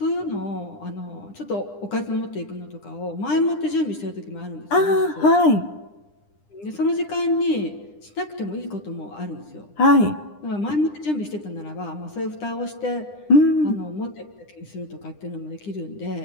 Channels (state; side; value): late; right; 9.9 ms